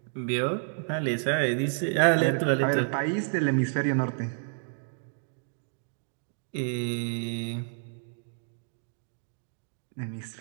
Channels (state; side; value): silent; left; digital silence